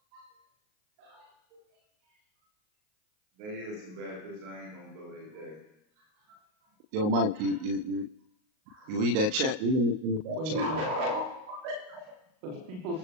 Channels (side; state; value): left; late; 38 ms